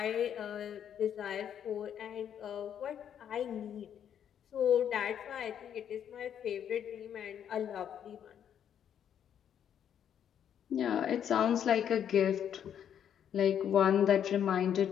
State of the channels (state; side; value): quieter; right; 9.2 dB